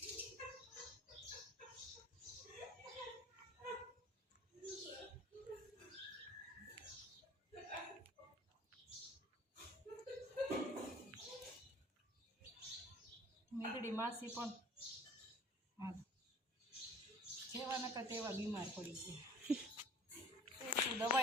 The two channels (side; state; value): both; normal; correlation 0.48